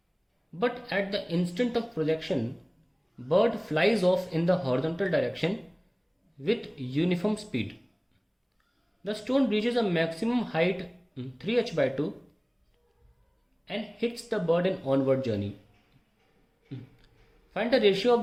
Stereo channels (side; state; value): both; identical; correlation 1.00